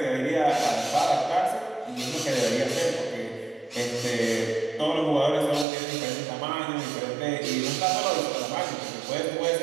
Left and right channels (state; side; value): drops out; left; at 5.7 s